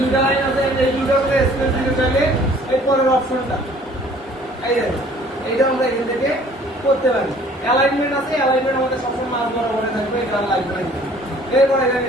লাইন আছে, এই দুইটা করে স্পেস দিতে চাইলে এই পরের অপশনটা এই দেখেন, এইটা আমরা এখান থেকে করতে পারি। অ্যালাইনমেন্ট আছে, অ্যালাইনমেন্ট আমাদের সবসময় মাঝ বরাবরে থাকবে, এটা লাগবে না। এরপর এখানে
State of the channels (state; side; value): normal; both; correlation 0.54